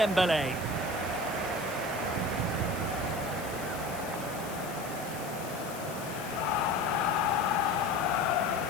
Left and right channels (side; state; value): left; noise; hiss, 14 dB below the sound